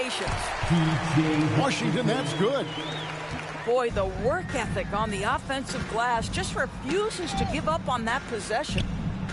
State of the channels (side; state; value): both; identical; correlation 1.00